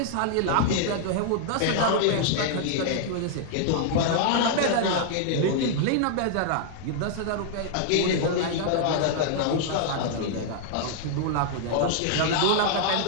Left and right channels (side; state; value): both; different; correlation -0.01